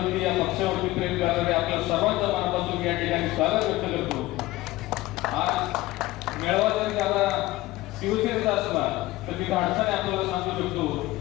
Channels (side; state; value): right; quieter; 18.1 dB